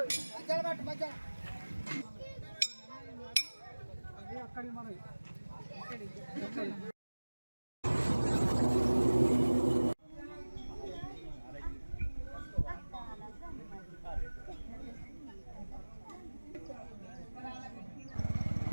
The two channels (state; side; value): inverted; both; correlation -1.00